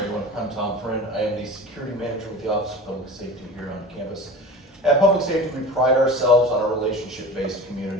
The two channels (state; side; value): normal; both; correlation 0.35